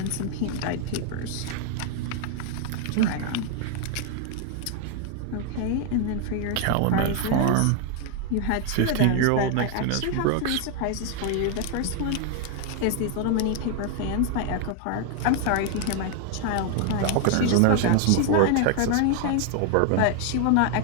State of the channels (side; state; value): both; different; correlation 0.00